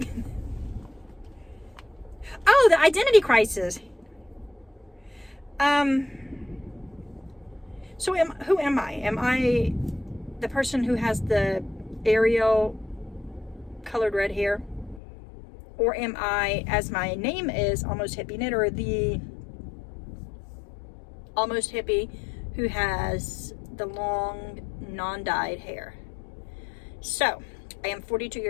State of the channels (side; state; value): right; drops out; at 15.0 s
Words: Oh, the identity crisis. So who am I? Am I the person who has the Ariel colored red hair? Or am I, as my name is, Almost Hippie Knitter, the almost hippie who has the long, non-dyed hair? So, I am 42